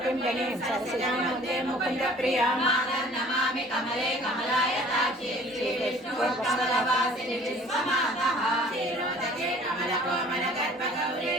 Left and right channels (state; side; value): normal; both; correlation 0.51